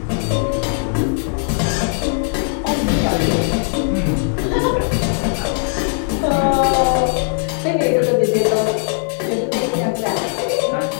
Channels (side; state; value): right; silent; digital silence